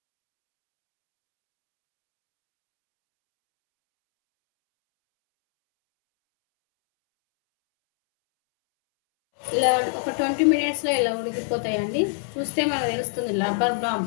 ఇలా ఒక 20 మినిట్స్లో ఇలా ఉడికిపోతాయండి. చూస్తే మనకు తెలుస్తుంది రబ్బర్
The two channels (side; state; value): right; silent; 63 dB below the other